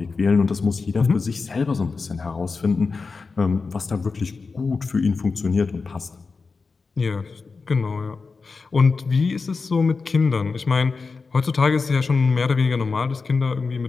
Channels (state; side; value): quieter; right; 4.5 dB